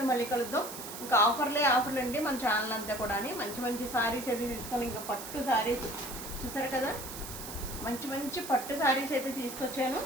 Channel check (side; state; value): right; noise; hiss, 10 dB below the sound